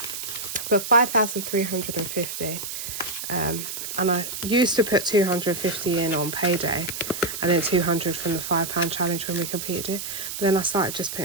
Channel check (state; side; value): noise; right; hiss, 6 dB below the sound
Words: But 5,350. And I used to put 250 in on payday, and then 200 from the £5 challenge when we completed it. But then I started just